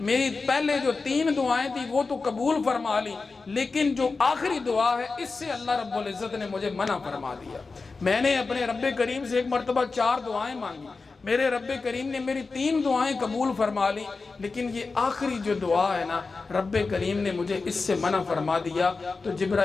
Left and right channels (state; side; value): quieter; right; 4.1 dB